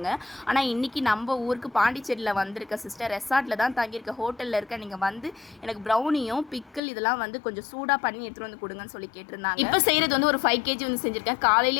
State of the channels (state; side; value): drops out; right; at 6.8 s